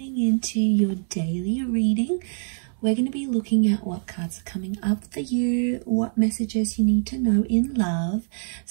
into your daily reading. We're going to be looking at what cards are coming up for you, what messages you need to know in love.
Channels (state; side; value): silent; left; digital silence